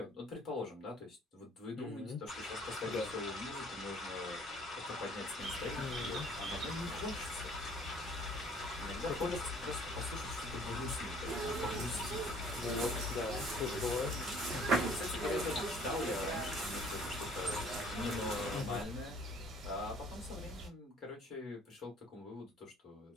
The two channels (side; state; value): both; normal; correlation 0.55